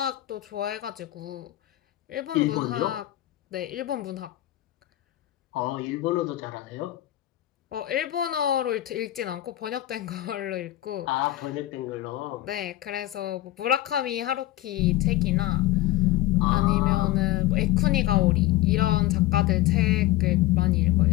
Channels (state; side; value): quieter; right; 15.7 dB